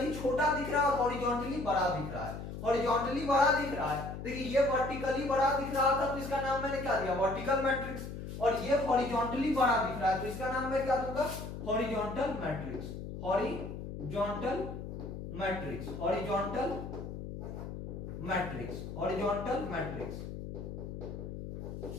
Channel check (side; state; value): left; noise; hum, 8 dB below the sound